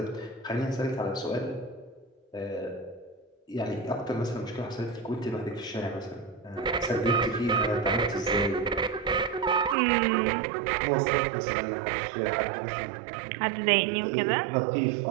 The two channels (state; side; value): drops out; left; at 9.8 s